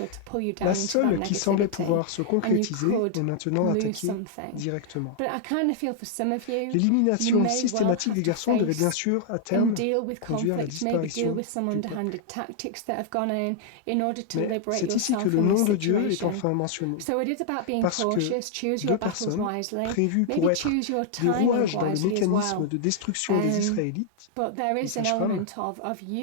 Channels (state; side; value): different; both; correlation -0.01